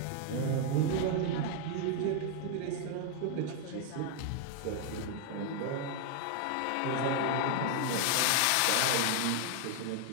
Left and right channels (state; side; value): different; both; correlation 0.00